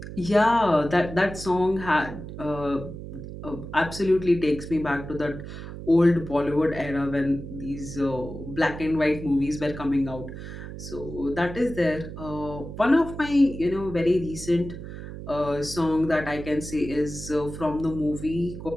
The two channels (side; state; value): right; noise; hum, 10 dB below the sound